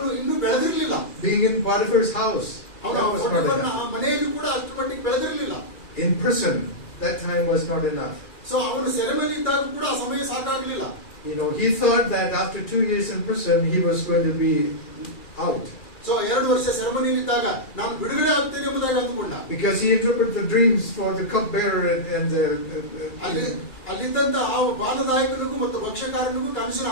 ಇನ್ನೂ ಬೆಳೆದಿರಲಿಲ್ಲ. Being in Potiphar's house, ಅವನ that was not enough. ಮನೆಯಲ್ಲಿ ಕೂಡ ಅಷ್ಟು ಮಟ್ಟಿಗೆ ಬೆಳೆದಿರಲಿಲ್ಲ. In prison, that time was not enough. So ಅವನು ಸೆರೆಮನೆ ಇದ್ದಾಗ ಕೂಡ ಆ ಸಮಯ ಸಾಕಾಗಲಿಲ್ಲ. You know, he thought that after 2 years in prison, he was going to be out. So 2 ವರ್ಷ ಸೆರೆಮನೆಯಲ್ಲಿದ್ದಾಗ ನಾನು ಬಿಡುಗಡೆ ಆಗ್ತೇನೆ ಎಂಬುದಾಗಿ ಅಂದುಕೊಂಡ. Because he interpreted the dreams for the cupbearer and the ಅಲ್ಲಿದ್ದಂತ ಆ ಬಾಲದಾಯಕನಿಗೂ ಮತ್ತು ಭಕ್ಷ್ಯಕಾರನಿಗೂ ಕನಸಿನ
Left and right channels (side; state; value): right; late; 2.3 ms